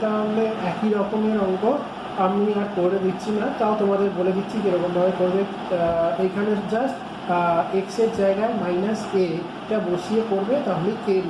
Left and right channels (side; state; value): both; identical; correlation 1.00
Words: তাহলে একই রকমের অঙ্ক, আমি আর করে দিচ্ছি না, তাও তোমাদের বলে দিচ্ছি কীরকমভাবে করবে। এইখানে জাস্ট এক্স এর জায়গায় মাইনাস এটা বসিয়ে করবে, তাহলে কে এর